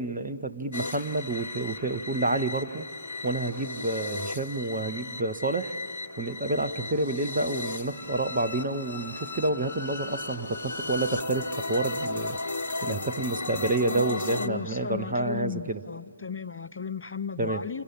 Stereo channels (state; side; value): inverted; both; correlation -0.41